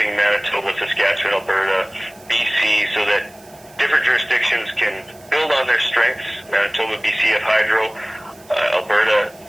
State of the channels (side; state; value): right; noise; hiss, 26 dB below the sound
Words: Manitoba, Saskatchewan, Alberta, BC, so that different jurisdictions can build on their strengths. Manitoba, BC have hydro, Alberta,